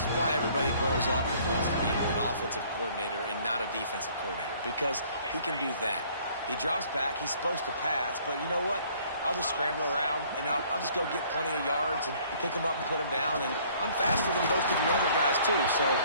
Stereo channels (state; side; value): inverted; both; correlation -0.58